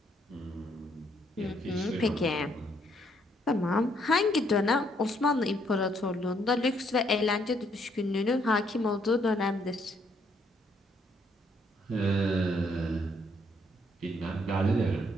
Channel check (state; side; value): normal; both; correlation 0.70